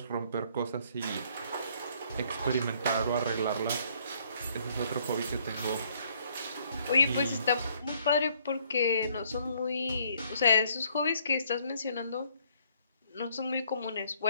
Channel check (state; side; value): inverted; both; correlation -0.65